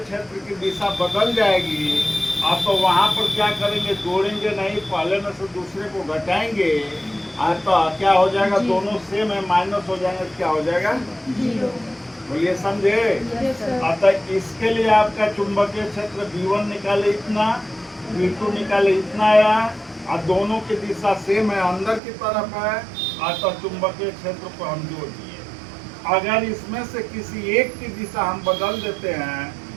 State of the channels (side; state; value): left; drops out; at 22.0 s